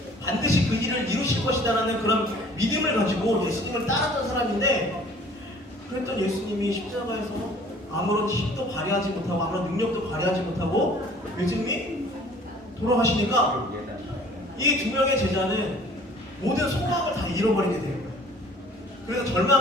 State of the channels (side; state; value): both; normal; correlation 0.52